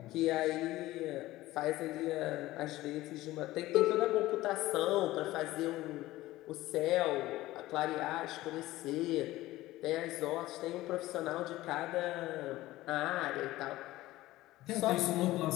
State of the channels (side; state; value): right; quieter; 17.0 dB